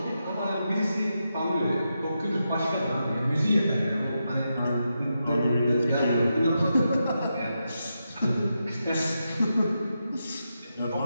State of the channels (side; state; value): both; inverted; correlation -0.86